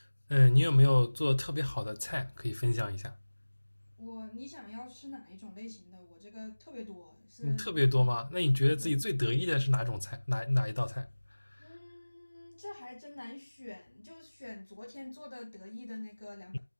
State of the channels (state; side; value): inverted; both; correlation -1.00